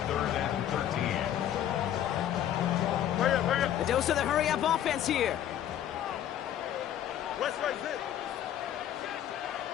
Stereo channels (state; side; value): quieter; right; 11.0 dB